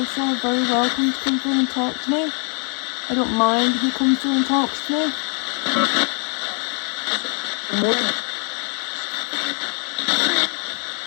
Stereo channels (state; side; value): quieter; right; 39.2 dB